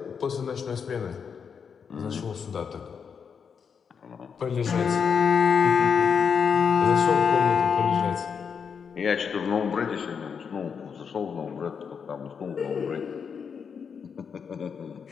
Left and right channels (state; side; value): quieter; right; 6.5 dB